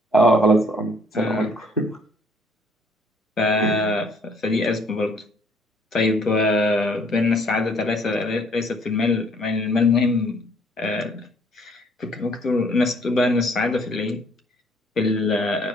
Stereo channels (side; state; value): both; normal; correlation 0.62